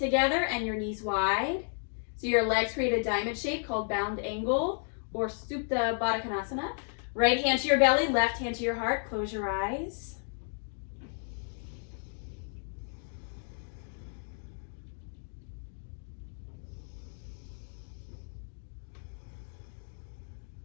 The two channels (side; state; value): right; silent; 56 dB below the other